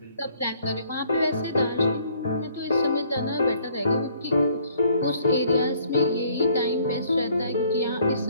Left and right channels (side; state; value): both; inverted; correlation -0.63